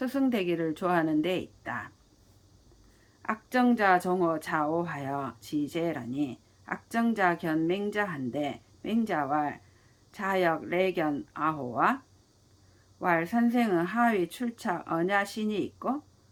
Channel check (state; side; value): identical; both; correlation 1.00